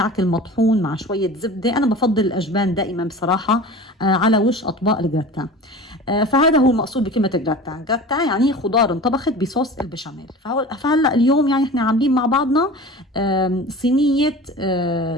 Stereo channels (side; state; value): both; normal; correlation 0.37